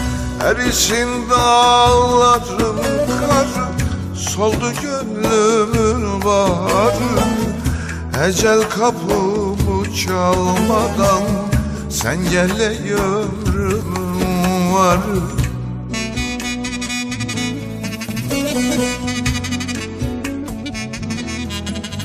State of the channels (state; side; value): identical; both; correlation 1.00